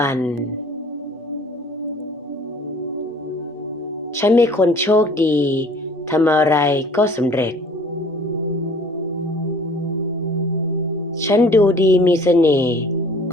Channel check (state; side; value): normal; both; correlation 0.51